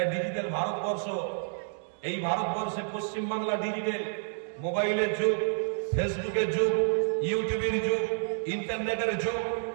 ডিজিটাল ভারতবর্ষ, এই ভারতবর্ষে পশ্চিম বাংলা ডিজিটাল, মোবাইলের যুগ, ফেসবুকের যুগ, ইউটিউবের যুগ, ইন্টারনেটের যুগ।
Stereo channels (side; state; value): left; silent; digital silence